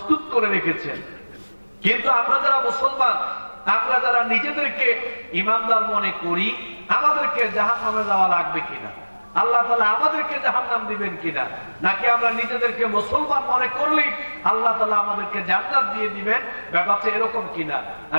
করে রেখেছেন। কিন্তু আমরা যারা মুসলমান, আমরা যারা নিজেদেরকে ঈমানদার মনে করি, আমাদেরকে জাহান্নামে যাওয়া লাগবে কিনা, আল্লাহ তাআলা আমাদেরকে জাহান্নাম দিবেন কিনা, নাকি আমরা নিজেদেরকে মুসলমান মনে করলেই আল্লাহ তাআলা আমাদেরকে জান্নাত দিয়ে দিবেন, ব্যাপারটা এরকম কিনা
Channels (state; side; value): inverted; both; correlation -1.00